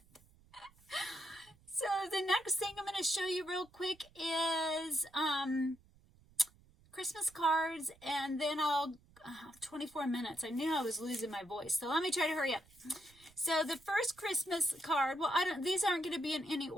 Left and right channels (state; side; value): noise; right; rumble, 28 dB below the sound